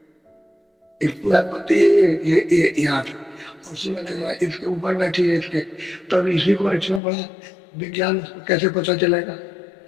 इसकी अनुमति ये यहाँ इसके ऊपर बैठी है, इसके, तब इसी को इतना बड़ा विज्ञान कैसे पता चलेगा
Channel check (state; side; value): drops out; right; at 7.0 s